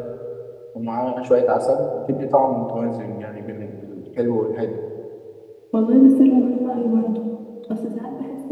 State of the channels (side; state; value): both; identical; correlation 1.00